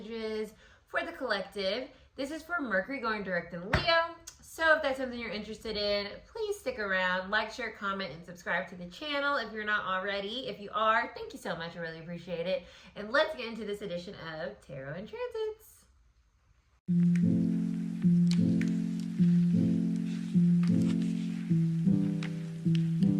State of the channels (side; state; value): both; identical; correlation 1.00